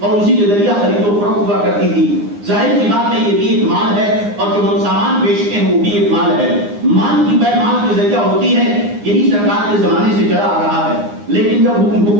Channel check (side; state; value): left; late; 9.8 ms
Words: اسی کے ذریعہ خرید و فروخت ہوا کرتی تھی۔ ظاہر سی بات ہے یہ بھی ایک مال ہے اور جو ہم سامان بیچتے ہیں وہ بھی ایک مال ہے۔ مال کی بے مال کے ذریعہ ہوتی ہے، یہی سرکار کے زمانے سے چلا آ رہا ہے۔ لیکن جب